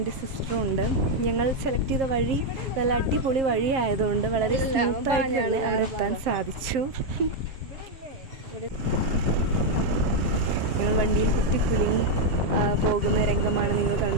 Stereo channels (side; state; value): left; late; 7.5 ms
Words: സിസ്റ്ററും ഉണ്ട്. ഞങ്ങൾ സെലക്ട് ചെയ്ത വഴി നല്ല അടിപൊളി വഴി ആയതുകൊണ്ട് വളരെ സ്മൂത്തായിട്ട് തന്നെ അവിടെ എത്താൻ സാധിച്ചു. ഞങ്ങൾ വണ്ടിയിൽ കുത്തിക്കുലുങ്ങി പോകുന്ന രംഗമാണ് നിങ്ങൾ